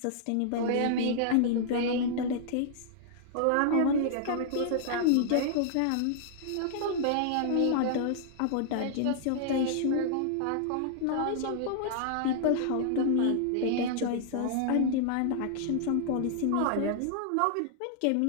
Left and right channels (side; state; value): both; different; correlation -0.01